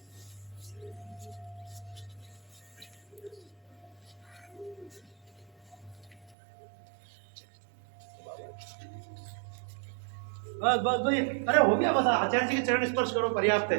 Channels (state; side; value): drops out; left; at 6.4 s